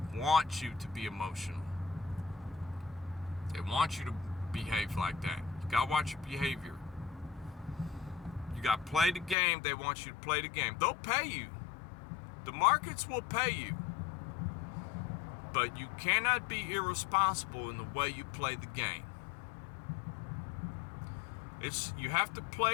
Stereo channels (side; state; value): right; drops out; at 9.3 s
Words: want you to be emotional. They want you to behave like that. You gotta watch your behavior. You gotta play the game. They want you to play the game. They'll pay you. The markets will pay you. But you cannot be irresponsible in the way you play the game. You have to